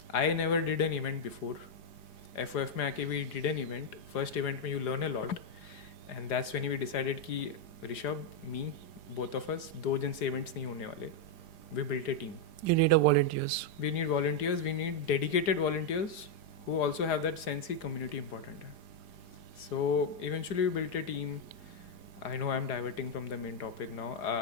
I never did an event before. FOF में आके we did an event. First event में you learn a lot, and that's when we decided कि Rishabh, me, both of us, 2 जन से events नहीं होने वाले. We built a team. You need a volunteers. We need volunteers. We need dedicated volunteers who also have that sense कि community important है. So eventually we built a team. I know I'm diverting from the main topic now.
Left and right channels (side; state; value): right; late; 4.9 ms